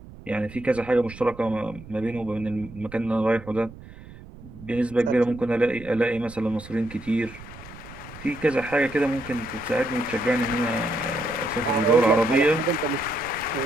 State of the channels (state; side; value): noise; right; rumble, 17 dB below the sound